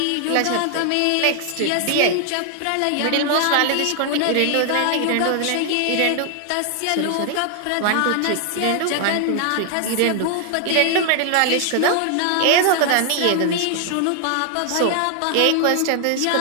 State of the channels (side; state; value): both; different; correlation 0.00